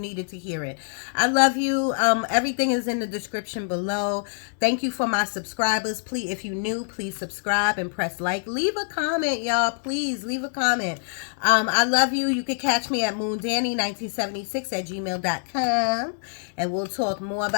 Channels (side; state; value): right; silent; digital silence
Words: to hear it. I love you. Everything is in the description below. Thank you for my subscribers. Please, if you're new, please subscribe and press like. Leave a comment, y'all. Please leave a comment. I love you. You can catch me at moondanny1976@gmail.com, and we'll talk more